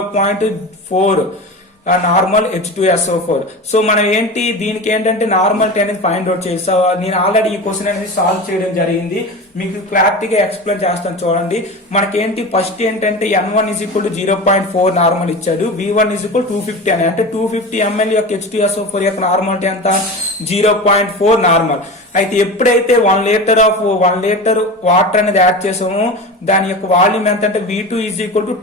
నార్మల్ H2SO4. సో మనం ఏంటి దీనికి ఏంటంటే నార్మాలిటీ అనేది ఫైండ్ అవుట్ చేయాలి. సో నేను ఆల్రెడీ ఈ క్వశ్చన్ అనేది సాల్వ్ చేయడం జరిగింది, మీకు క్లారిటీగా ఎక్స్ప్లెయిన్ చేస్తాను చూడండి. మనకేంటి ఫస్ట్ ఏంటంటే N1 = 0.4 నార్మల్ ఇచ్చాడు, V1 = 250 అని. అంటే 250 ml యొక్క H2SO4 యొక్క నార్మాలిటీ ఎంత 0.4 నార్మల్. అయితే ఎప్పుడైతే 1 లీటర్ వాటర్ అనేది యాడ్ చేసామో దాని యొక్క వాల్యూమ్ ఎంత అంటే V2 =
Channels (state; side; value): normal; both; correlation 0.29